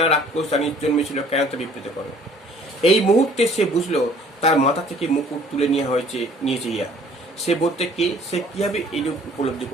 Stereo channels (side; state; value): both; normal; correlation 0.55